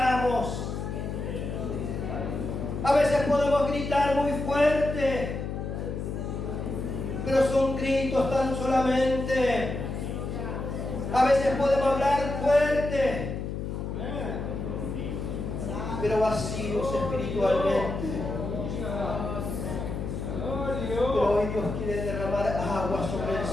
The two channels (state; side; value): noise; left; hum, 4 dB below the sound